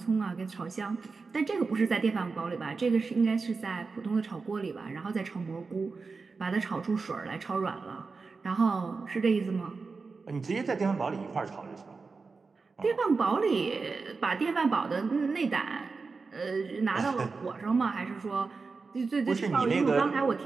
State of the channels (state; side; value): quieter; left; 4.4 dB